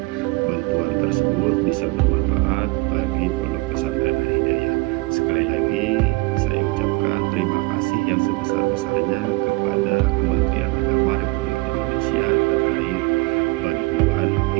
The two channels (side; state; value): left; quieter; 25.4 dB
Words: bantuan tersebut bisa bermanfaat bagi Pondok Pesantren Al Hidayah. Sekali lagi saya ucapkan terima kasih yang sebesar-besarnya kepada Kementerian Agama Republik Indonesia terkait bantuan